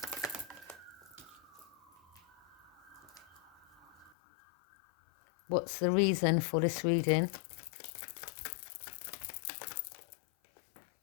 What's the reason for this reading?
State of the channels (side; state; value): right; drops out; at 4.2 s